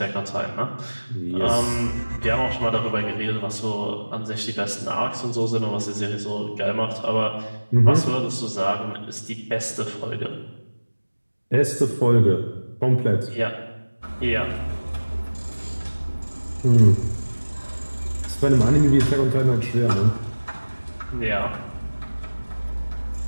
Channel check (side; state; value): both; inverted; correlation -1.00